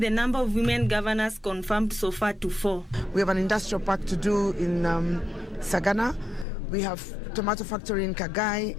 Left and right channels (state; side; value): drops out; right; at 6.5 s